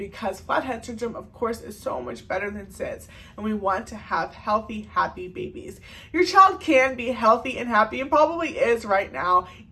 flathead syndrome, of course, is so much better than SIDS, and we want to have healthy, happy babies. Your child can be healthy and happy, and probably is right now,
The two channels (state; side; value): identical; both; correlation 1.00